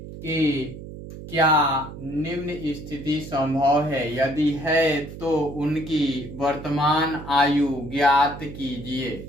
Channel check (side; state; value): right; noise; hum, 12 dB below the sound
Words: क्या निम्न स्थिति संभव है, यदि है तो उनकी वर्तमान आयु ज्ञात